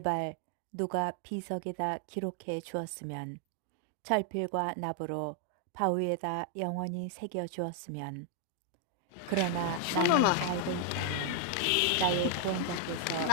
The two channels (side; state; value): both; different; correlation 0.00